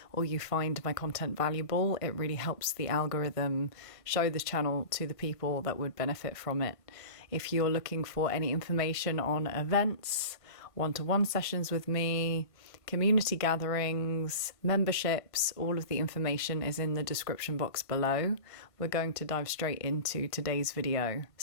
or you find my content valuable. It really helps the algorithm show this channel to the people that would benefit from it. If you're looking for any information on events, one-to-one sessions with me, community gatherings, memberships, all of the information is in the description box below. We're going to dive straight into today's video.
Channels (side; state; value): right; late; 1.5 ms